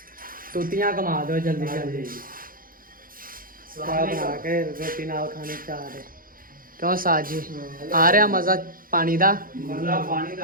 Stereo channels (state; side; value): late; left; 0.41 ms